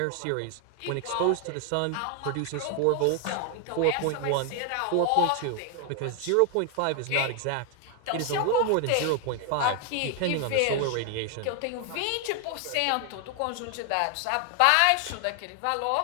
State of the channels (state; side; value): different; both; correlation 0.00